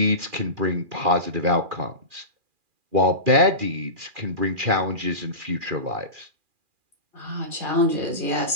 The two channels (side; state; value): left; late; 2.4 ms